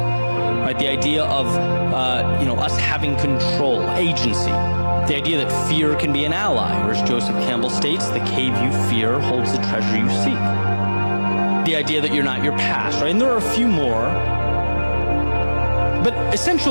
Right, the idea of us having control, agency. The idea that fear can be an ally, or as Joseph Campbell states, the cave you fear holds the treasure you seek. The idea that you're not your past, right? And there are a few more. But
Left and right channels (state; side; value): inverted; both; correlation -1.00